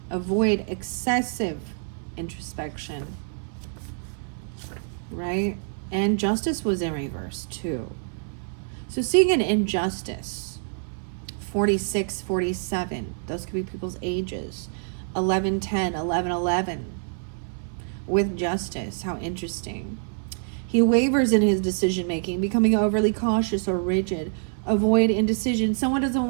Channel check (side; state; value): left; silent; 59 dB below the other